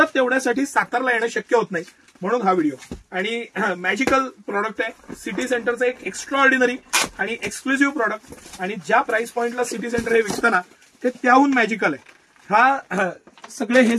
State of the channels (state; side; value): identical; both; correlation 1.00